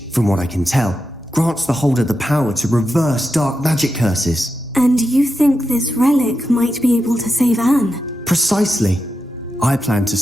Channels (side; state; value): both; normal; correlation 0.88